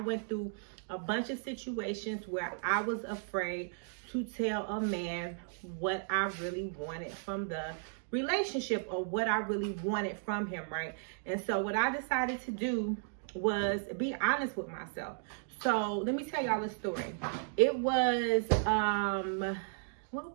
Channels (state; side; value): silent; left; digital silence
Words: through a bunch of situations where I was afraid to tell a man what I really wanted from the relationship or what I really wanted from him, right? And so what I decided to do was be honest with myself. So let me tell y'all a story. It was